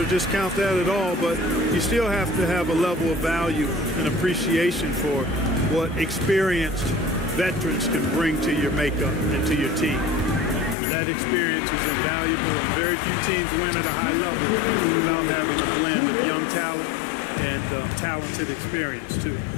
discount that at all, but you still have to have a level of value and appreciation for what experienced veterans can bring to your makeup and to your team. That experience is invaluable, and very few teams win at a high level without having a blend of young talent and talented experience, too.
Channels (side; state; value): right; drops out; at 10.8 s